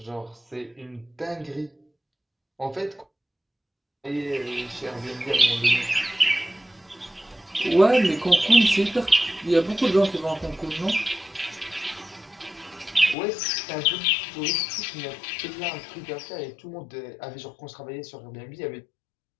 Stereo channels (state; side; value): drops out; right; at 13.2 s